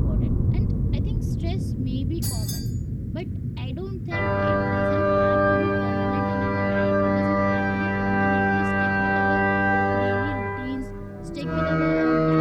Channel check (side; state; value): both; identical; correlation 1.00